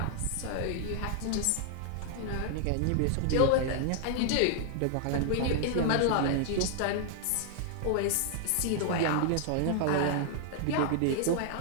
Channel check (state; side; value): different; both; correlation 0.00